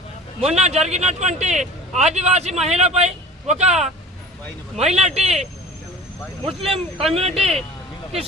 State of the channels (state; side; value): normal; both; correlation 0.41